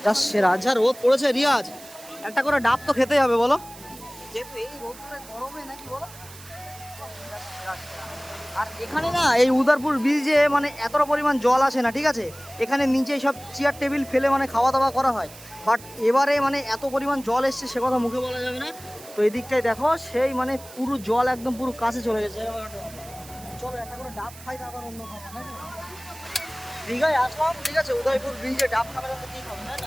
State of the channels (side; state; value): right; noise; hiss, 18 dB below the sound